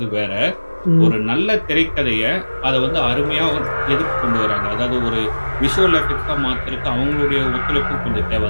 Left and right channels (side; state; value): both; inverted; correlation -1.00